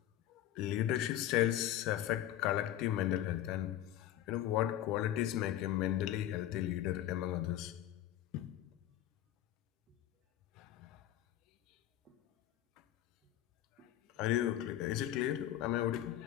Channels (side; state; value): right; quieter; 12.7 dB